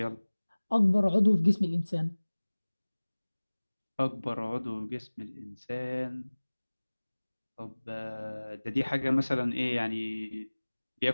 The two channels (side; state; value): both; inverted; correlation -1.00